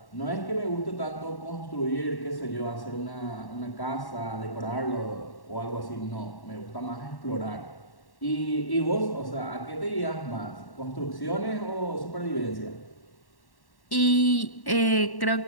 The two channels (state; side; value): late; right; 1.1 ms